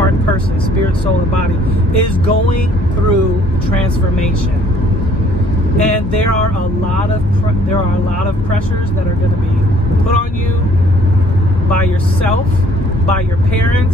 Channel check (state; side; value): normal; both; correlation 0.59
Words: person, spirit, soul, and body, is going through transformation. And there are a lot of pressures that are going to be put on you by yourself, by your